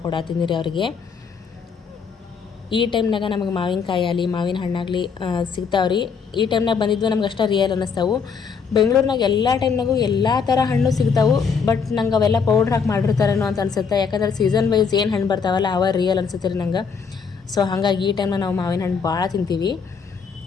ರೀ ಅವ್ರಿಗೆ. ಈ ಟೈಮ್ನಾಗ ನಮಗೆ ಮಾವಿನಕಾಯಿ ಆಗಲಿ ಮಾವಿನ ಹಣ್ಣಾಗಲಿ ಸಿಗ್ತಾವ್ರಿ. ಈ ಟೈಮ್ನಾಗ ಬಂದಿದ್ವು ನಮ್ಗೆ ಅಷ್ಟೇ ರಿಯಲ್ ಅನ್ನಿಸ್ತಾವೆ. ಬೆಂಗಳೂರಿನಾಗ ಎಲ್ಲ ಟೈಮ್ನಾಗೂ ಎಲ್ಲ ಥರ ಹಣ್ಣು ಸಿಗ್ತಾವೆ. ಬಟ್ ನಂಗೆ ಅವೆಲ್ಲ ಪೌಡ್ರ್ ಹಾಕಿ ಮಾಡಿರ್ತಾರೇನೋ ಅಂತ ಅನ್ಸುತ್ತೆ. ಯಾಕಂದ್ರೆ ಸೀಸನ್ ವೈಸ್ ಏನು ಹಣ್ಣು ಬರ್ತಾವಲ್ಲ ಅವ ರಿಯಲ್ ಅನ್ಸುತ್ತೆ ರೀ ನಂಗೆ. ಸೊ ಹಾಗಾಗಿ ಈ ಟೈಮ್ನಾಗ ನಾವು ಮಾವಿನ ಹಣ್ಣು ಭಾಳ ತಿಂತೀವಿ.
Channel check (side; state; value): right; quieter; 5.9 dB